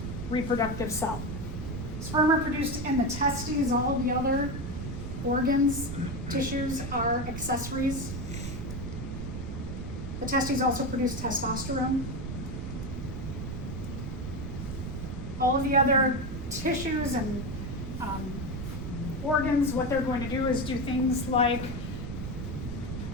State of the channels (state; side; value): noise; right; rumble, 6 dB below the sound